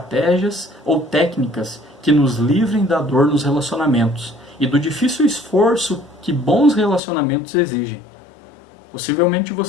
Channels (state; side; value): drops out; right; at 7.0 s